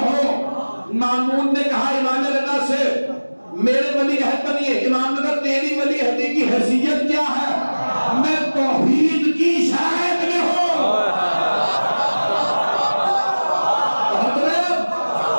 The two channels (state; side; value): inverted; both; correlation -1.00